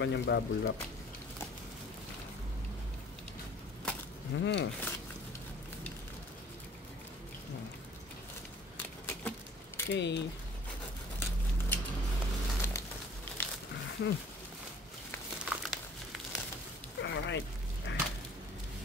bubble wrap. Okay. Alright.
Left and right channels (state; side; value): normal; both; correlation 0.52